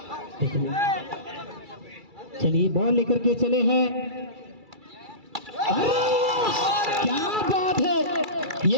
चलिए बॉल लेकर के चले हैं। क्या बात है,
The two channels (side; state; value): left; late; 2.3 ms